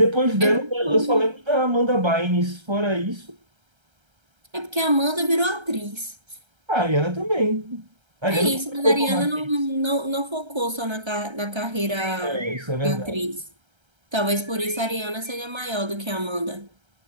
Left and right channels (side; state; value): left; late; 1.3 ms